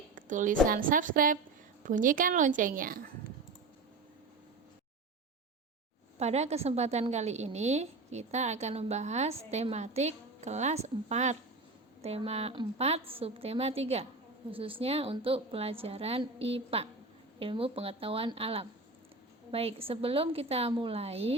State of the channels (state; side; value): quieter; left; 3.4 dB